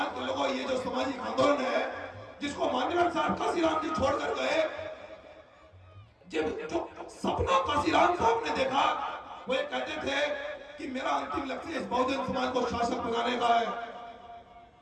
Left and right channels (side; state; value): both; identical; correlation 1.00